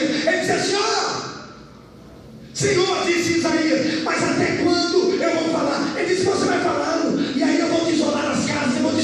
Ele diz assim, Senhor, disse Isaías, mas até quando eu vou falar? Ele disse, você vai falando, e aí eu vou desolar as casas, eu vou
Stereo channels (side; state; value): both; identical; correlation 1.00